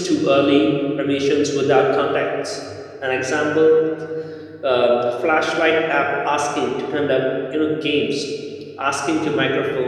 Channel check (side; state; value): both; identical; correlation 1.00